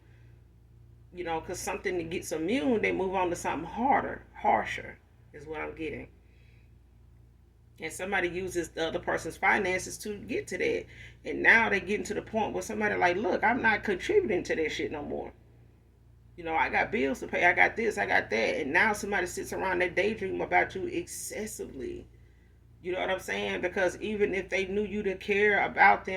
Because something that gets immune, they move on to something harder, harsher, is what I'm getting. And somebody uses the other person's finances to get to that. And now they getting to the point where somebody like, look, I'm not contributing to that shit no more. I got bills to pay. I got this, I got that. And now somebody sits around that daydream about you excessively. You know what I'm saying? Because even if they knew you to care about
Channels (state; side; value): identical; both; correlation 1.00